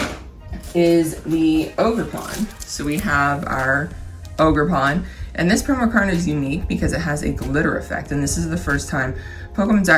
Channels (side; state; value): both; identical; correlation 1.00